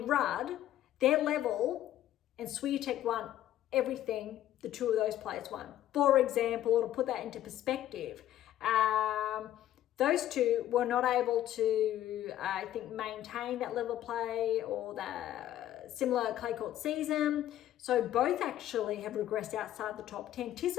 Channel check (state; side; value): quieter; right; 12.6 dB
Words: Rudd, their level, and Swiatek won everything the two of those players won. For example, to put that into perspective, those two were not able to, I think, maintain that level of play or the similar clay court season. So both actually have regressed outside the top 10.